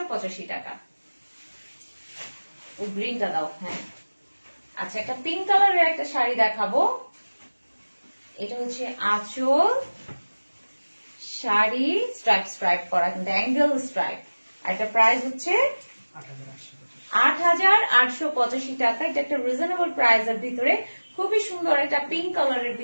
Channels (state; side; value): inverted; both; correlation -1.00